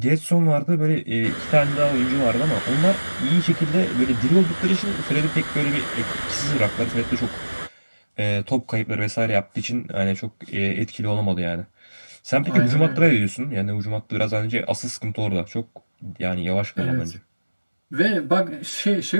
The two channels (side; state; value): both; inverted; correlation -1.00